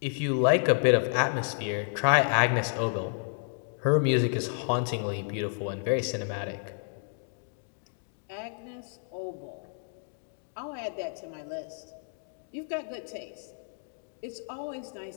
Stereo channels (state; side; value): silent; right; digital silence